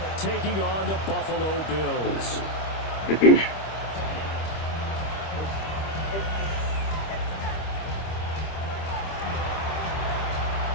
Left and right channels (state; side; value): late; right; 25 ms